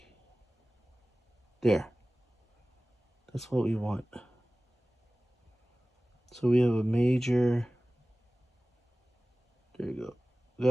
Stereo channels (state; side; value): normal; both; correlation 0.97